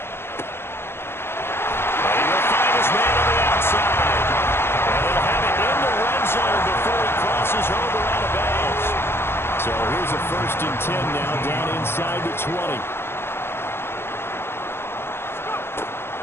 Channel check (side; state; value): right; late; 0.11 ms